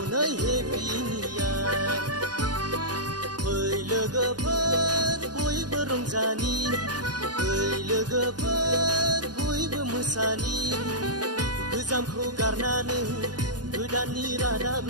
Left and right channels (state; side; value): late; left; 0.69 ms